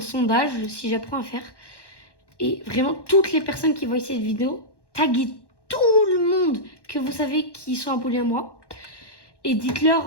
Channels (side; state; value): right; late; 1.1 ms